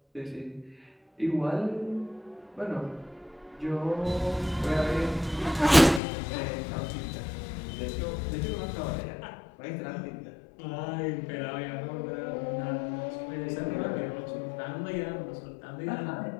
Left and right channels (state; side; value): drops out; right; at 6.0 s